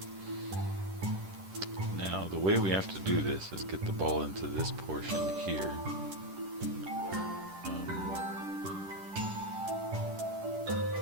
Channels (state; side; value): late; left; 10 ms